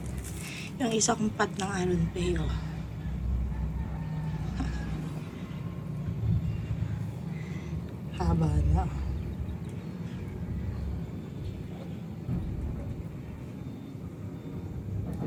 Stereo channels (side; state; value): both; identical; correlation 1.00